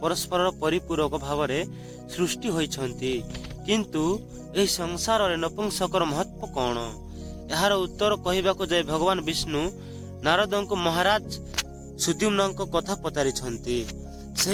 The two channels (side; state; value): both; identical; correlation 1.00